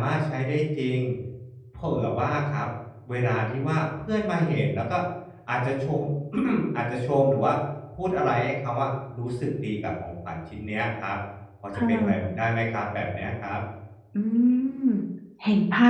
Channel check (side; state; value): both; identical; correlation 1.00